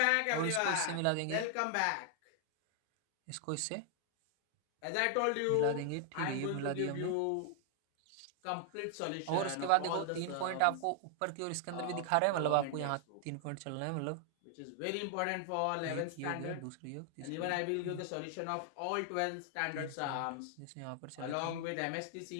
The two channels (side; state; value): both; different; correlation 0.00